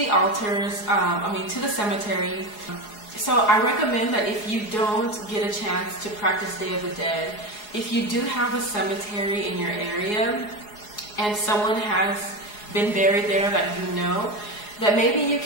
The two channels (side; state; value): right; late; 4.8 ms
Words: altars, to the cemetery. So I recommend that if you don't get a chance to practice Day of the Dead, if you do have a cemetery in your area and someone has been buried there that you know, that maybe you